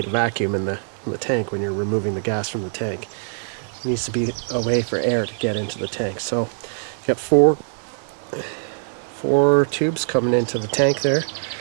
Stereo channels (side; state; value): left; silent; 64 dB below the other